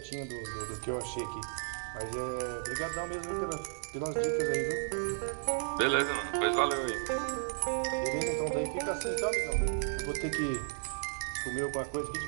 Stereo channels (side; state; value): left; silent; digital silence